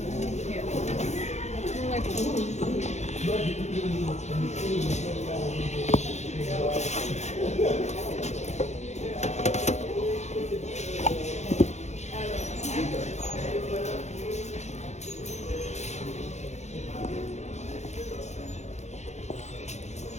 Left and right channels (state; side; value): late; right; 0.33 ms